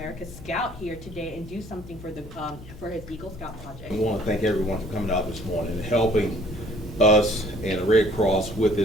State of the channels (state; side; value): noise; left; hum, 17 dB below the sound